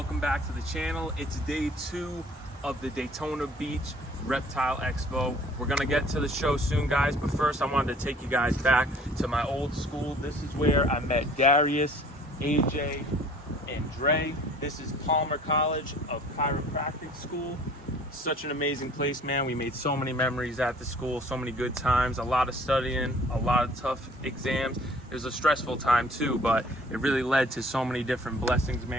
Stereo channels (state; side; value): normal; both; correlation 0.53